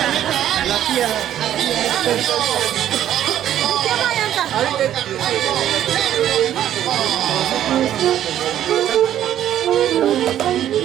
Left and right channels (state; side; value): quieter; left; 11.3 dB